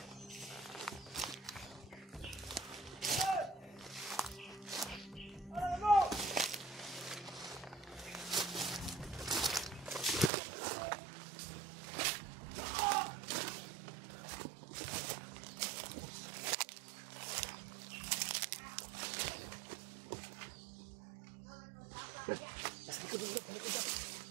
Brad. Sa likod dito, sa likod dito.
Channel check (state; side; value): drops out; left; at 10.3 s